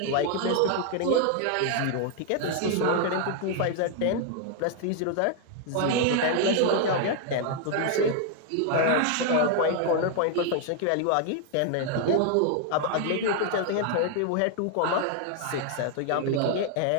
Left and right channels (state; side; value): different; both; correlation 0.00